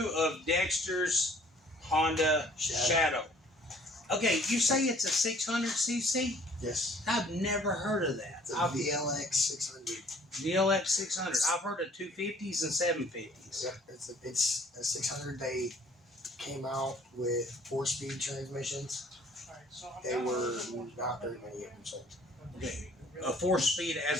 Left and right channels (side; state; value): both; normal; correlation 0.56